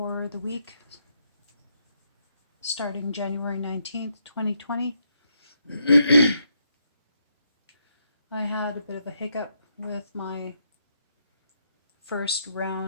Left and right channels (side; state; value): both; inverted; correlation -0.78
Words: the week starting January 19th, 2020. I had a bit of a hiccup with my first